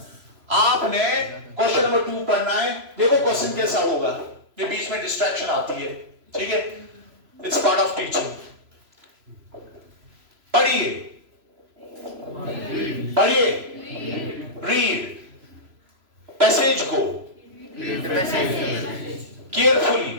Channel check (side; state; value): left; late; 3.0 ms